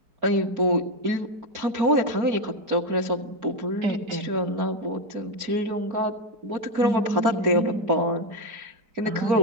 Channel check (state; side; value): late; left; 4.6 ms